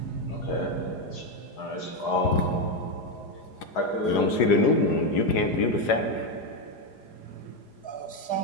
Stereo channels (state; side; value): late; right; 4.9 ms